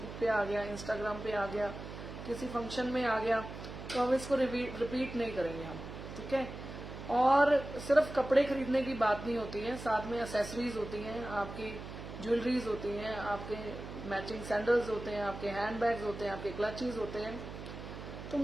पे आ गया, इंस्टाग्राम पे आ गया, किसी फंक्शन में आ गया, तो हम इसको रिपीट नहीं करेंगे हम, ठीक है। और सिर्फ कपड़े खरीदने की बात नहीं होती है, साथ में एसेसरीज होती हैं, आपकी ज्वेलरीज होती हैं, आपके मैचिंग सैंडल्स होते हैं, आपके हैंड बैग्स होते हैं, आपके क्लचेस होते हैं। तो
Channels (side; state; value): right; noise; hum, 10 dB below the sound